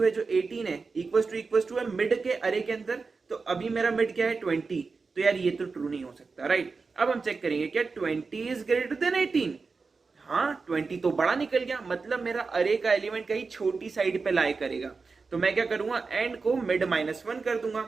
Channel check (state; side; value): quieter; left; 4.5 dB